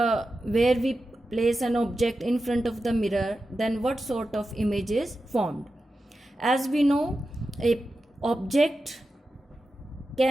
where we place an object in front of the mirror, then what sort of image is formed. As we know, a object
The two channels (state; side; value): normal; both; correlation 0.91